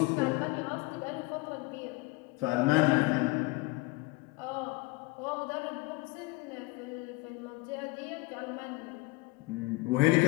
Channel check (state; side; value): quieter; right; 22.9 dB